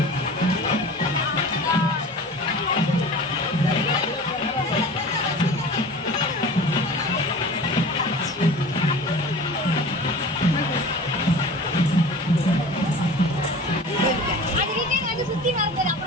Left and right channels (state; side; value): normal; both; correlation 0.39